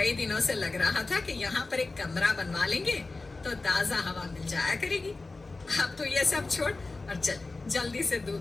दिनों से लग रहा था कि यहाँ पर एक कमरा बनवा लेंगे तो ताजा हवा मिल जाया करेगी। अब तो ये सब छोड़ और चल जल्दी से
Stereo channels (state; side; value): quieter; right; 3.5 dB